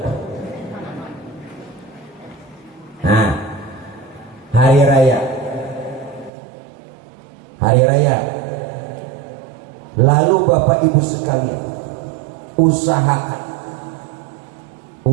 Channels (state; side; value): drops out; left; at 6.3 s